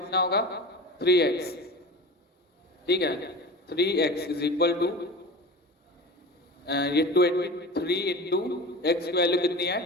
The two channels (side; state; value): both; normal; correlation 0.33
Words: होगा? 3x। ठीक है। 3x इज इक्वल टू ये 23 इंटू एक्स की वैल्यू कितनी है?